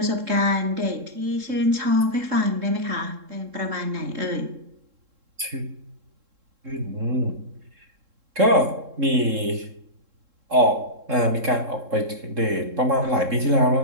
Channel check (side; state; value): left; late; 3.7 ms